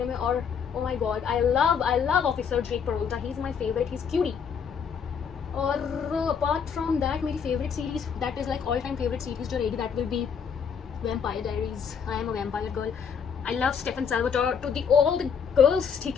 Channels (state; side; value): quieter; right; 6.8 dB